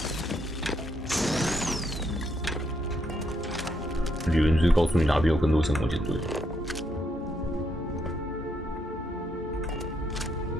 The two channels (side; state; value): both; normal; correlation 0.76